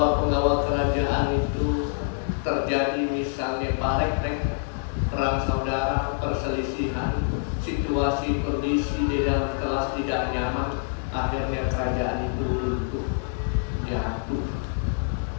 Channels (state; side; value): silent; right; digital silence